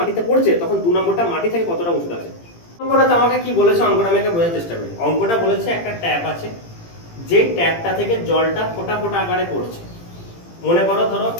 পড়ছে তখন 2 নম্বরটা মাটি থেকে কতটা উঁচুতে আছে। অঙ্কটা আমাকে কি বলেছে, অঙ্কটা আমি বোঝার চেষ্টা করি। অঙ্কটা বলেছে একটা ট্যাপ আছে, যে ট্যাপটা থেকে জলটা ফোঁটা ফোঁটা আকারে পড়ছে। মনে করো ধরো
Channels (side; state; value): right; late; 18 ms